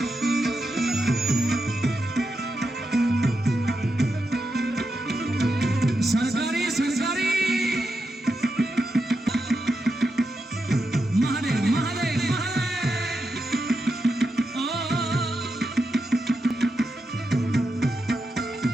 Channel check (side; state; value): both; normal; correlation 0.86